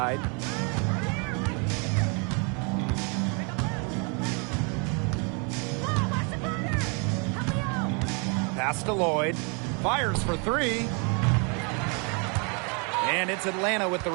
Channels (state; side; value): quieter; left; 34.8 dB